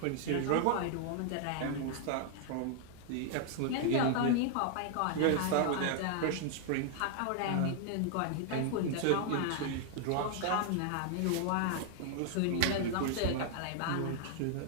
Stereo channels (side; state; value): both; different; correlation -0.01